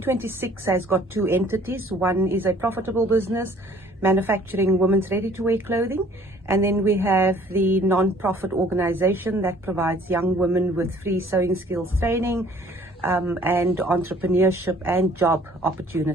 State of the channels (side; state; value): both; normal; correlation 0.56